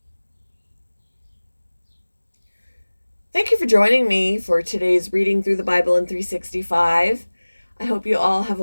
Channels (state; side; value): inverted; both; correlation -1.00